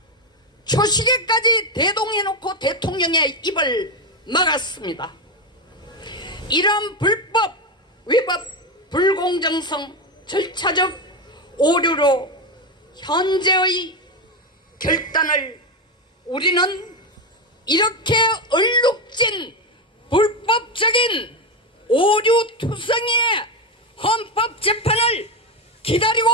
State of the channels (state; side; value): normal; both; correlation 0.11